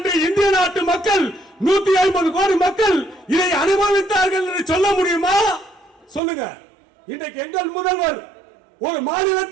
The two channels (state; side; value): drops out; left; at 6.2 s